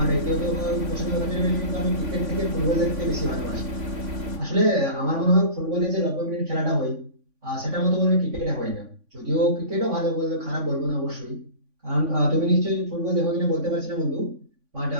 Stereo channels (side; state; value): left; late; 3.5 ms